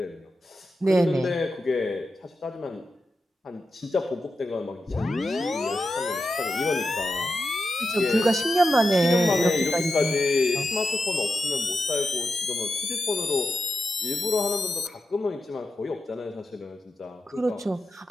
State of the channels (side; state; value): both; normal; correlation 0.89